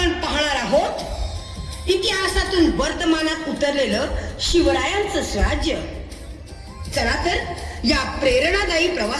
पाहणार आहोत इतिहासातून वर्तमानात उतरलेलं शिवरायांचं स्वराज्य. चला तर या प्रेरणादायी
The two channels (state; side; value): identical; both; correlation 1.00